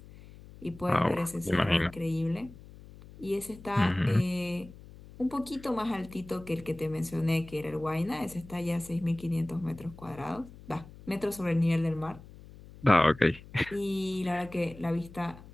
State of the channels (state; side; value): noise; left; hum, 19 dB below the sound